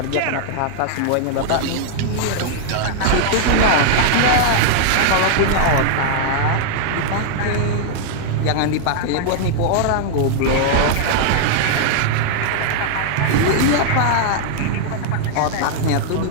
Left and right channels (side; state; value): both; different; correlation -0.01